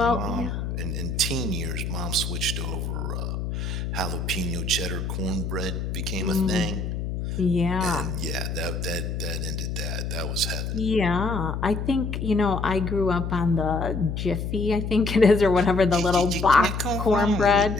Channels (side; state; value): left; noise; hum, 3 dB below the sound